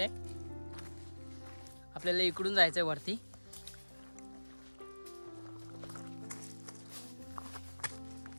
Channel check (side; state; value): both; inverted; correlation -1.00